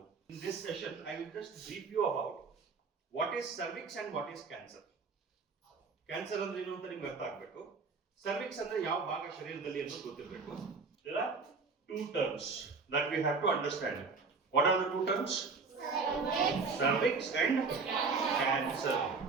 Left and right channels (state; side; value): quieter; left; 4.5 dB